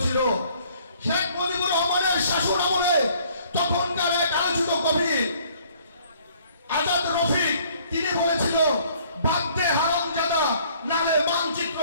শেখ মুজিবুর রহমানের শাসন আমলে তখনকার এক আলোচিত কবি আজাদ রফিক তিনি বলেছিল, বাগদে হারামজাদা নালে মানচিত্র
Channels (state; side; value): inverted; both; correlation -0.59